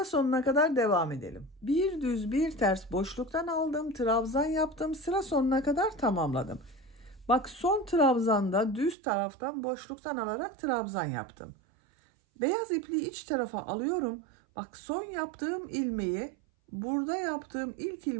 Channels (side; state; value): left; drops out; at 9.0 s